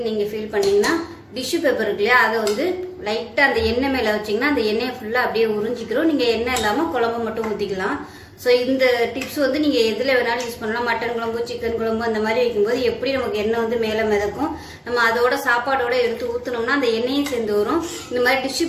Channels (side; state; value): both; identical; correlation 1.00